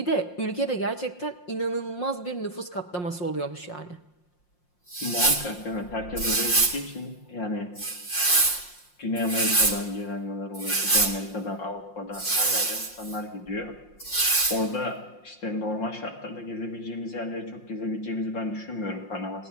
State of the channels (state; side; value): late; right; 5.6 ms